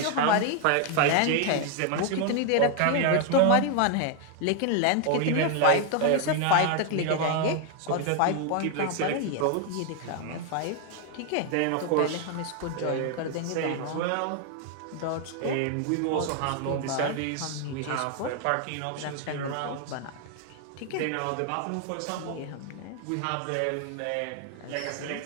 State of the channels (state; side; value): different; both; correlation 0.00